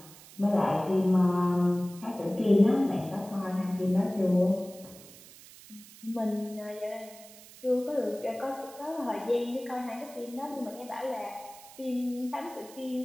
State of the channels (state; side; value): noise; right; hiss, 20 dB below the sound